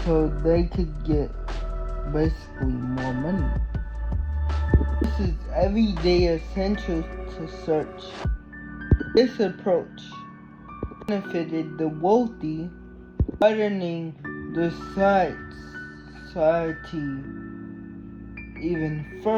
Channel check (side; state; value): both; identical; correlation 1.00